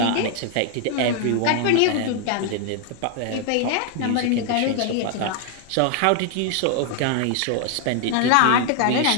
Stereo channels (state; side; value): different; both; correlation 0.00